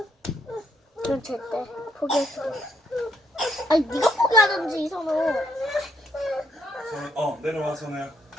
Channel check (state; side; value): normal; both; correlation 0.71